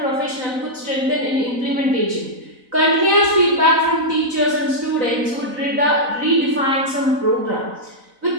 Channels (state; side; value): late; left; 4.0 ms